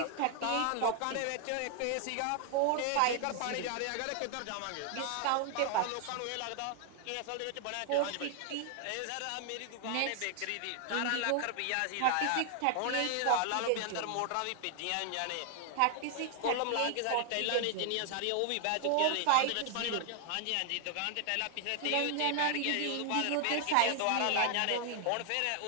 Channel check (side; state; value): both; different; correlation 0.00